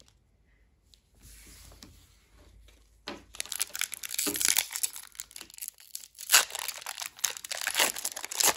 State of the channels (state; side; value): identical; both; correlation 1.00